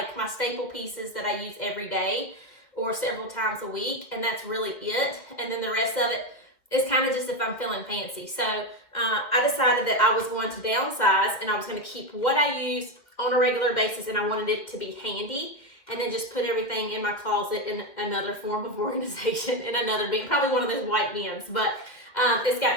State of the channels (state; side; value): late; right; 2.2 ms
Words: my staple pieces that I use every day or several times a week, and that's really it. And then the rest of it is kind of just if I'm feeling fancy. So I decided that I was going to downsize and I was going to keep what I use on a regular basis, and I wanted it to be handy, and then just put everything in my closet in another form of organization, in another bin, probably one of those white bins. But it's